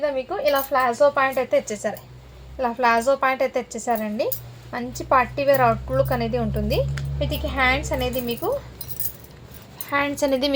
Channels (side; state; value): both; identical; correlation 1.00